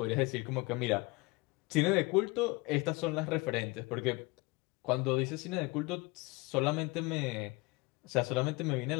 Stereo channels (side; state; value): right; quieter; 25.0 dB